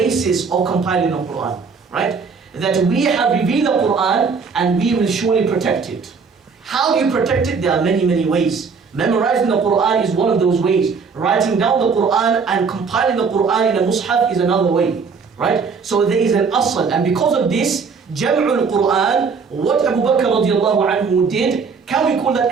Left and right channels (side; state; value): left; quieter; 5.3 dB